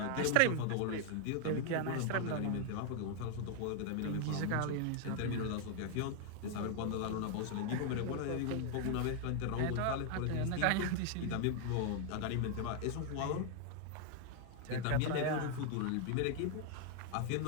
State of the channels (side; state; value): both; different; correlation 0.00